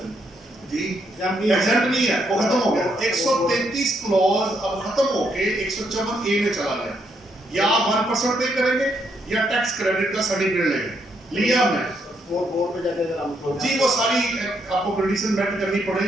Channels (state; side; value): normal; both; correlation 0.75